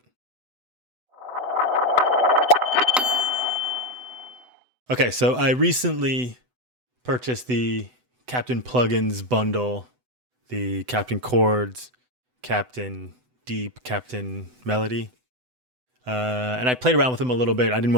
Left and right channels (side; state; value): left; late; 8.0 ms